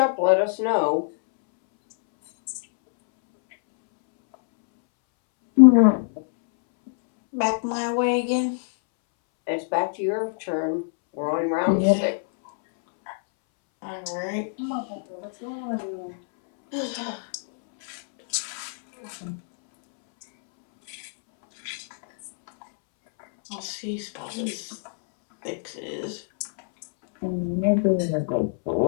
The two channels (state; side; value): silent; right; 62 dB below the other